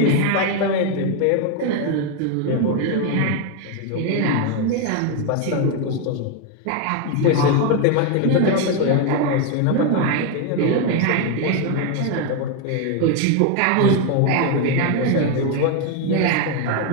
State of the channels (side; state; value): both; different; correlation 0.01